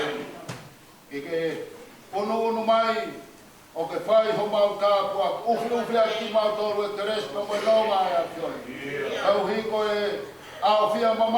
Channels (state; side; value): identical; both; correlation 1.00